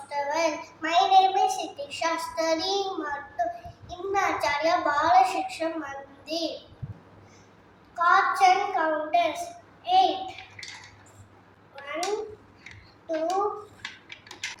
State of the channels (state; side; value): identical; both; correlation 1.00